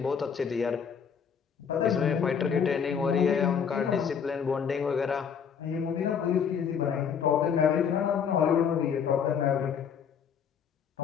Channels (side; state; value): right; quieter; 7.2 dB